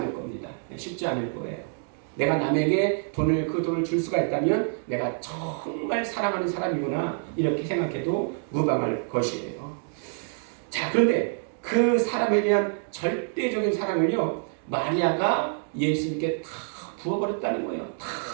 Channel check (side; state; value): left; silent; 60 dB below the other